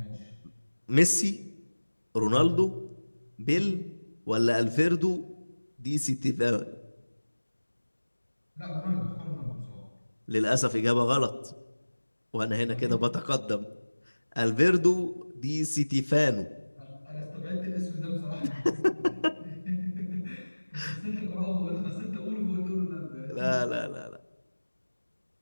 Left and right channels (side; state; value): both; inverted; correlation -1.00